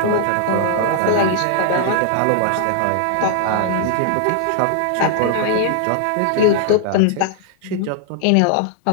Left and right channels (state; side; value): different; both; correlation 0.00